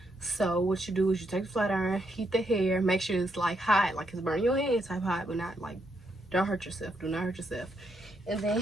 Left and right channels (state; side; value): normal; both; correlation 0.78